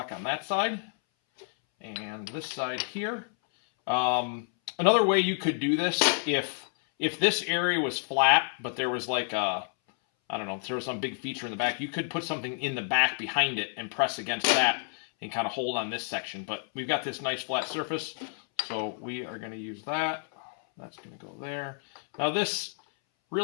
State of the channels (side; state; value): right; silent; 58 dB below the other